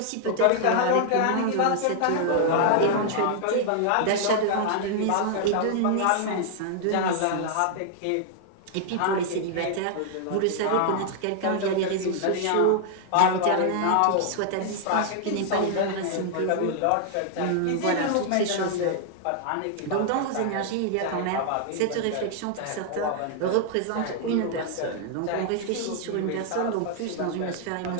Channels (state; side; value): different; both; correlation -0.01